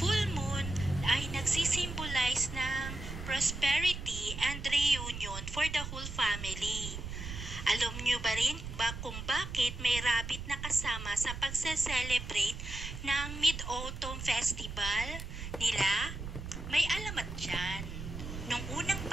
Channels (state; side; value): noise; right; rumble, 8 dB below the sound